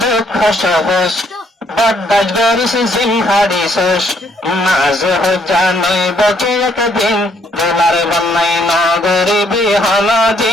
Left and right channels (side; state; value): both; normal; correlation 0.69